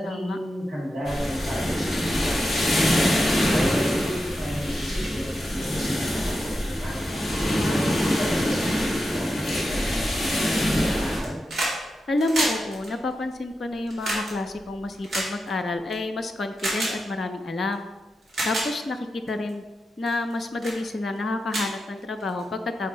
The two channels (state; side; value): normal; both; correlation 0.89